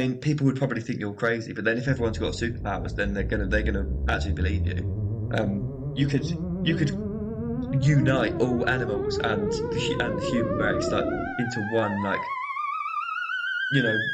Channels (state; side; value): identical; both; correlation 1.00